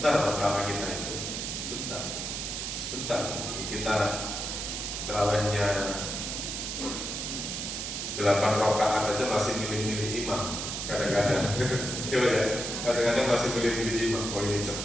terawih kita itu sebentar. Kita terawihnya 8 rakaat aja masih milih-milih imam. Kadang-kadang kadang-kadang masih milih-milih imam. Oh ini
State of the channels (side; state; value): right; noise; hiss, 4 dB below the sound